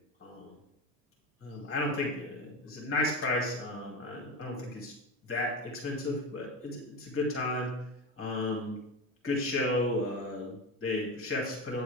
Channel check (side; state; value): both; normal; correlation 0.23